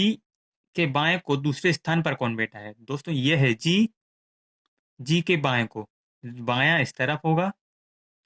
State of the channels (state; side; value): identical; both; correlation 1.00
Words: के बाएं को दूसरे स्थान पर कौन बैठा है? दोस्तों ये है जी, जी के बाएं को, बायां इस तरफ होगा।